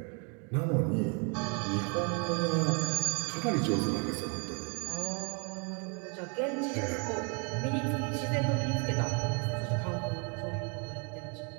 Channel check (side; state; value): left; quieter; 35.5 dB